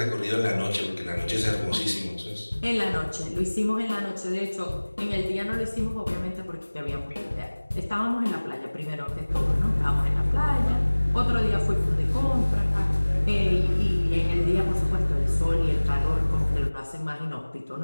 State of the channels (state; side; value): inverted; both; correlation -1.00